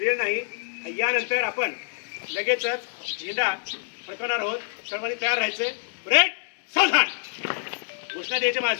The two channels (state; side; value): silent; right; 61 dB below the other